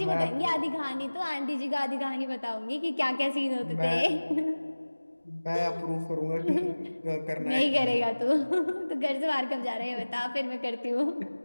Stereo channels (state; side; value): inverted; both; correlation -1.00